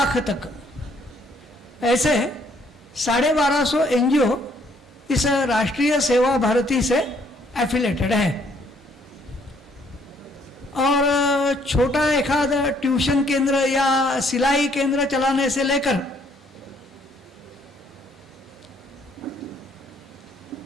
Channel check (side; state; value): both; normal; correlation 0.66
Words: तक ऐसे 1250 एनजीओ इस राष्ट्रीय सेवा भारती से एफिलेटेड है। और छोटा एखाद ट्यूशन केंद्र या सिलाई केंद्र चलाने से लेकर